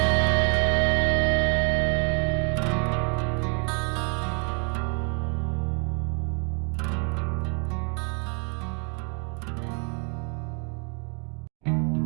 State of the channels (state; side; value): quieter; left; 36.7 dB